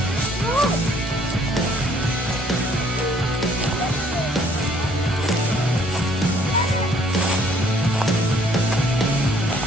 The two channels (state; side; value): normal; both; correlation 0.61